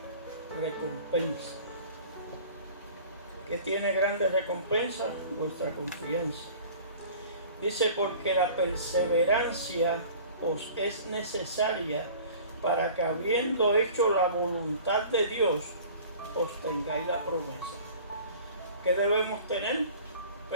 recompensa. ¿Qué tiene grande recompensa? Vuestra confianza. Dice: porque la perseverancia os es necesaria para que, habiendo hecho la voluntad de Dios, os tengáis la promesa. ¿Qué debemos tener?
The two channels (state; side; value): inverted; both; correlation -0.45